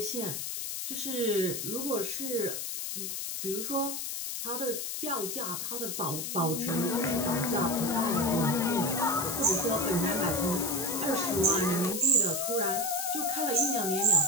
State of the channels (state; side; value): noise; left; hiss, 4 dB below the sound